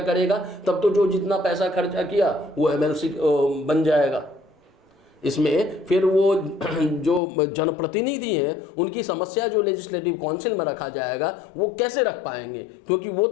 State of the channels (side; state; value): right; drops out; at 7.2 s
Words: तब तो जो जितना पैसा खर्चा किया वो एमएलसी बन जाएगा। इसमें फिर वो जो जनप्रतिनिधि हैं उनकी समस्या जो लेजिस्लेटिव काउंसिल में रखा जाएगा वो कैसे रख पाएंगे, क्योंकि वो